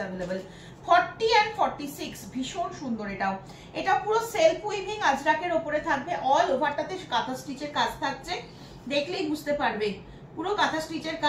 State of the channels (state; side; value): identical; both; correlation 1.00